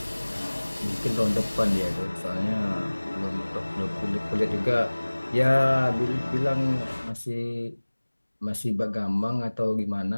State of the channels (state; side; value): inverted; both; correlation -1.00